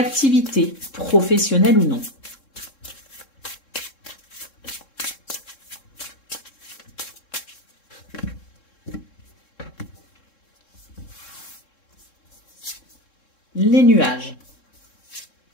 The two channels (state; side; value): late; right; 3.7 ms